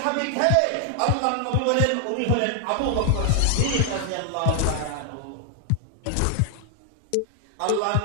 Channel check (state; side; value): different; both; correlation 0.00